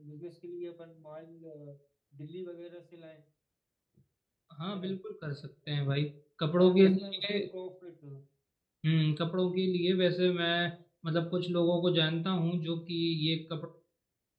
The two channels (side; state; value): both; identical; correlation 1.00